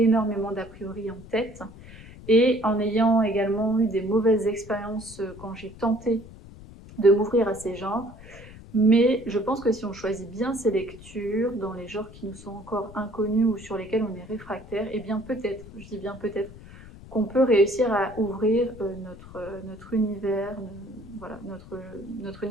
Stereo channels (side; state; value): left; noise; rumble, 18 dB below the sound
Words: d'a priori en tête et en ayant également eu des mauvaises expériences quand j'ai tenté de m'ouvrir à ces genres. Mais je pense que si on choisit bien ses lectures, dans les genres qui nous sont encore inconnus ou sur lesquels on est réfractaire, et bien peut-être, je dis bien peut-être, qu'on peut réussir à ouvrir notre univers, voilà, notre